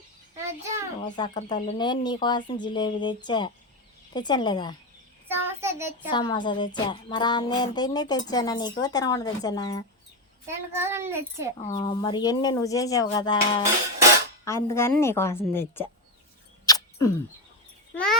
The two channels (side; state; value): both; normal; correlation 0.11